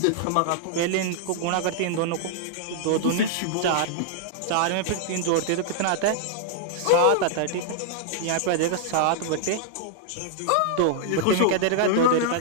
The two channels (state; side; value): different; both; correlation -0.01